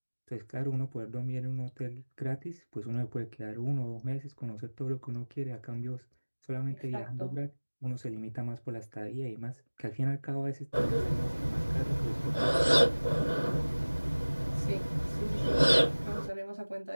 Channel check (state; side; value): inverted; both; correlation -1.00